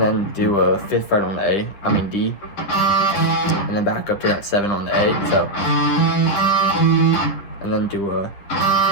then do a 5th fret on the D, and then back up to that 7 on the A, so, and then do a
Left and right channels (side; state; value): right; late; 10 ms